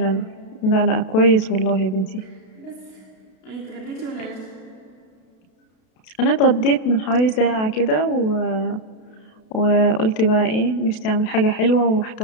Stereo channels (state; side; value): late; right; 32 ms